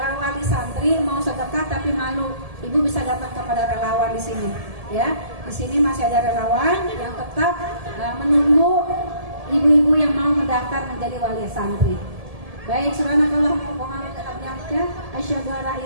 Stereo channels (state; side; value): late; left; 1.7 ms